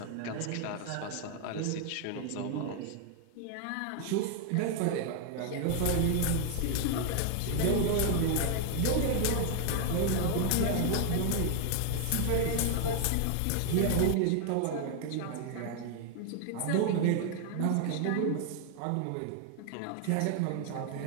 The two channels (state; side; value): different; both; correlation 0.00